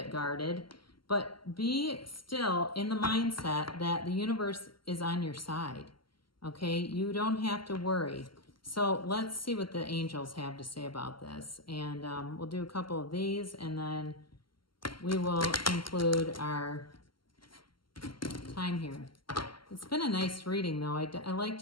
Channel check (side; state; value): right; late; 0.73 ms